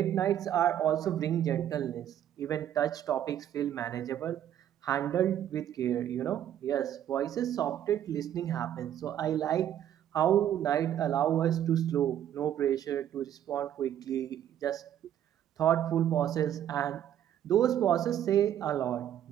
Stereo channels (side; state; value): left; quieter; 10.8 dB